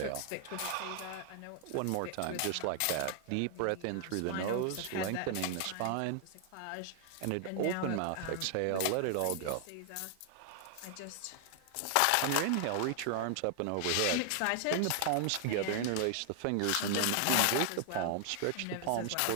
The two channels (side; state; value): both; different; correlation 0.00